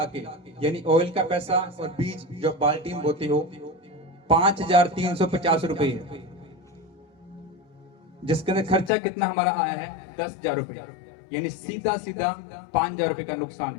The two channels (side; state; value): right; drops out; at 8.9 s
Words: के, यानी ऑयल का पैसा और बीज जो बाल्टी में बोते हो, 5,350 रुपए है, जिसके अंदर खर्चा कितना हमारा आया है? 10,000 रुपए, यानी सीधा 5,000 रुपए का नुकसान